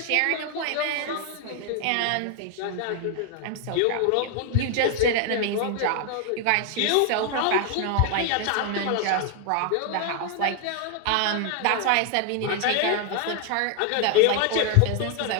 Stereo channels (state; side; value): different; both; correlation 0.01